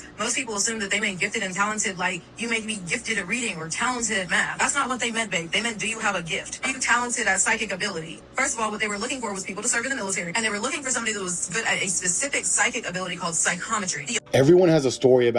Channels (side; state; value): both; identical; correlation 1.00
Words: most people assume that they meant gifted and talented, like you may be gifted at reading or talented at math. That's not what they meant, babe. They meant, do you have a gift? Are you talented at psychic ability? First of all, what they were looking for was people to serve in the military, and they were looking for somebody that was good at a specific psychic ability called psychometry. Everyone has a story